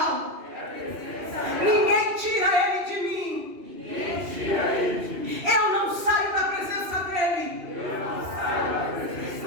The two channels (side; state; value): left; late; 2.8 ms